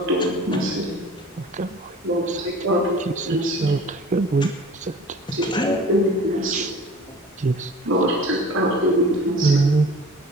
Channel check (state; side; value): normal; both; correlation 0.44